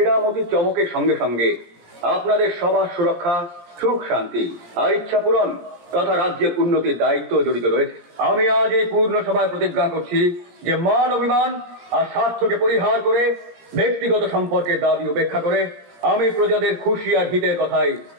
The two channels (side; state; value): left; late; 17 ms